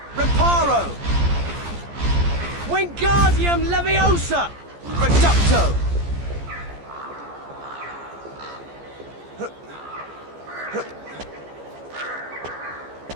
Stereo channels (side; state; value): left; late; 14 ms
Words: Reparo! Wingardium Leviosa! Reducto!